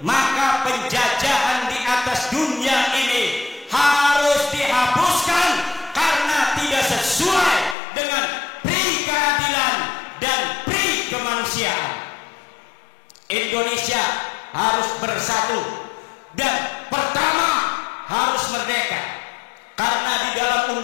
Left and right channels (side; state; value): right; drops out; at 7.8 s